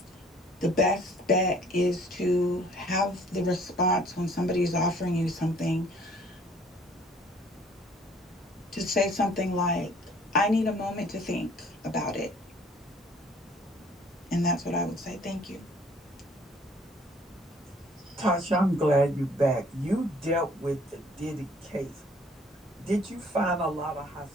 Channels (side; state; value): both; normal; correlation 0.57